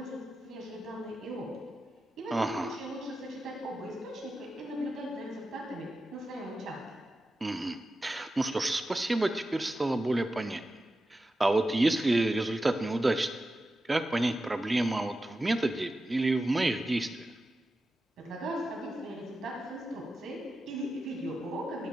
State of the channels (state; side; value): normal; both; correlation 0.91